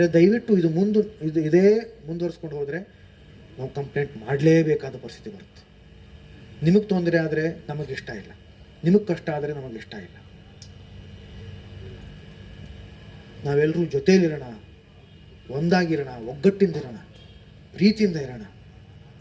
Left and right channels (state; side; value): identical; both; correlation 1.00